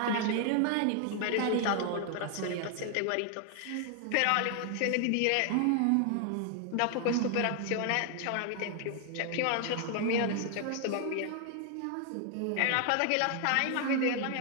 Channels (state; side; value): different; both; correlation 0.00